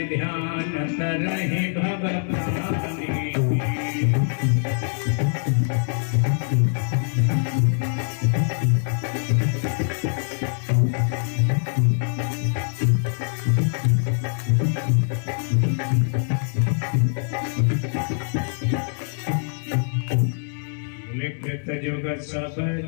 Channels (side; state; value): right; silent; digital silence